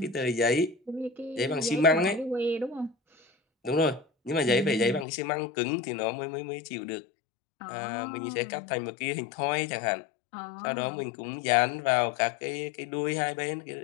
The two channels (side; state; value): right; drops out; at 5.1 s